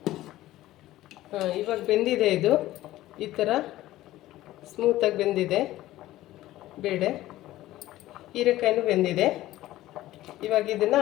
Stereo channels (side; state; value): right; quieter; 15.5 dB